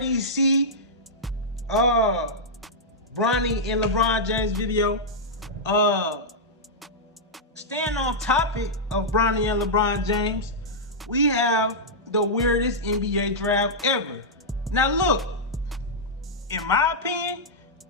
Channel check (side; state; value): both; normal; correlation -0.08